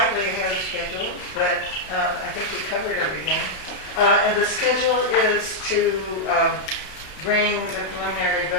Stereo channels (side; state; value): right; late; 30 ms